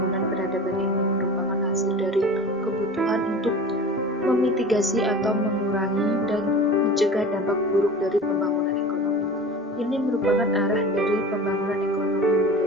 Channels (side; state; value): both; normal; correlation 0.36